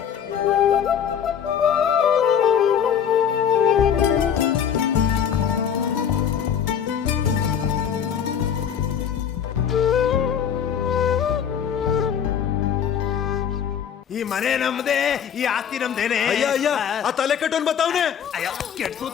ಈ ಮನೆ ನಮ್ದೇ, ಈ ಆಸ್ತಿ ನಮ್ದೇನೆ. ಅಯ್ಯ ಅಯ್ಯ ಆ ತಲೆ ಕಟ್ಟೋನ್ ಬತ್ತಾವನೆ. ಅಯ್ಯ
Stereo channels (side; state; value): right; quieter; 8.3 dB